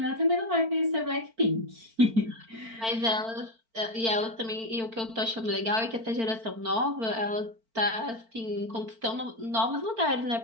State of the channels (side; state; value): left; late; 4.4 ms